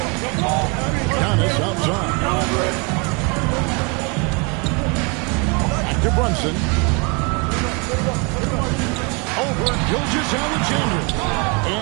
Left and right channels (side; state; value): left; quieter; 31.6 dB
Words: Giannis outside. Back to Brunson. Over Gilgeous-Alexander.